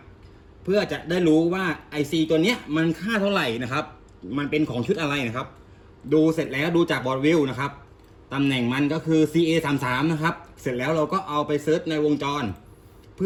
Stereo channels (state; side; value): identical; both; correlation 1.00